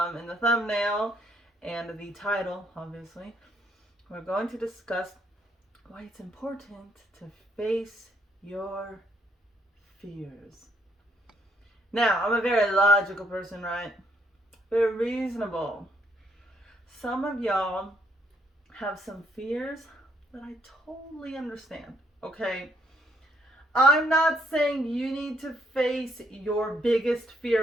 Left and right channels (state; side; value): normal; both; correlation 0.70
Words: in the thumbnail and the title, obviously, we're going to discuss why it's important to face your fears. Now, I'm a very logical person, right? Very reasonable. Some of y'all have some fears that I totally understand, okay? I'm not saying you need to face your biggest